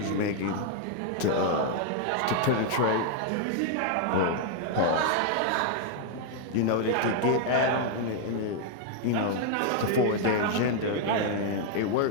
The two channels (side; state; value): both; different; correlation 0.00